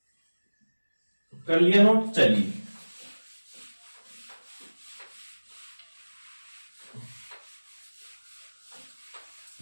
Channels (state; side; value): inverted; both; correlation -1.00